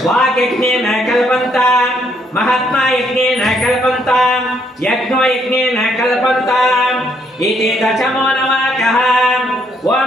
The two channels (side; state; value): both; normal; correlation 0.71